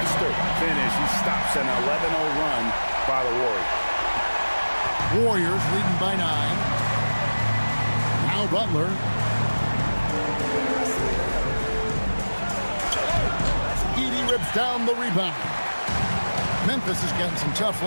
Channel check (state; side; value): inverted; both; correlation -1.00